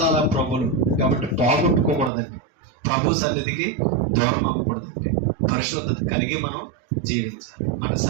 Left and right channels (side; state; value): left; drops out; at 2.1 s